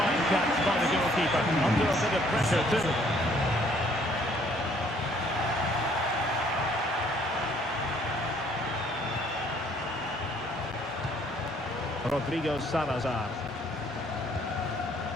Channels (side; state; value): both; normal; correlation 0.62